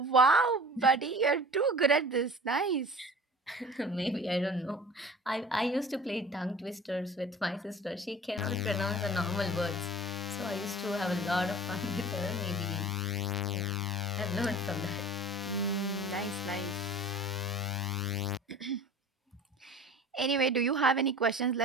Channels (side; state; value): both; normal; correlation 0.41